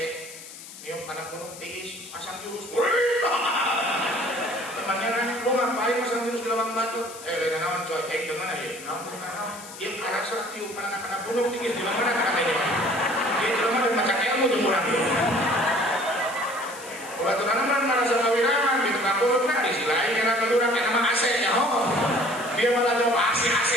Nyium anak gunung tiis, pasang jurus. Temannya nanya, lu ngapain pasang jurus di lawang batu? Lain naon coy, dengan aja. Naon dia arah serak tiup anak-anak gunung tiis di mana katanya. Dia cuma dan macam ilmu jemuran. Waktu tanaman merasa kawiraman di tukang gunung kan di sisi lain karena kedua nama AC ya ho. Dia malah jawab AC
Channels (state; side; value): noise; left; hiss, 15 dB below the sound